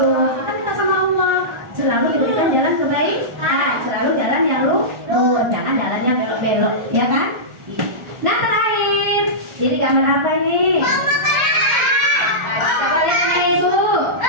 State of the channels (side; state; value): left; late; 1.4 ms